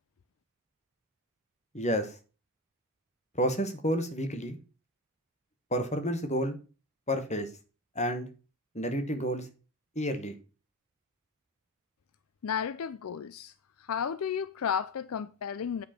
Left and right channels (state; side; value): normal; both; correlation 0.23